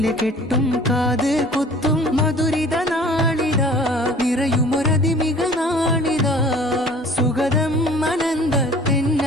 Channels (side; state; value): both; normal; correlation 0.48